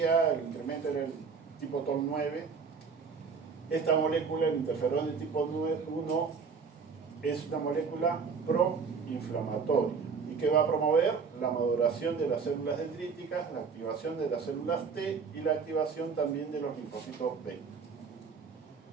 el incremento era el tipo TOL9. Esta molécula, el interferón de tipo 1, es una molécula proinflamatoria. ¿Y qué va a promover? La maduración de las células dendríticas, la activación de las células T y la activación también de los linfocitos B.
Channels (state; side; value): quieter; left; 5.5 dB